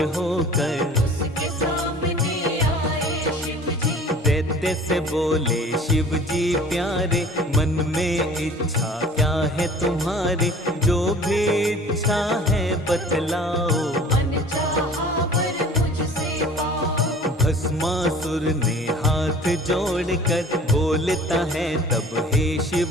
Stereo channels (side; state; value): both; normal; correlation 0.46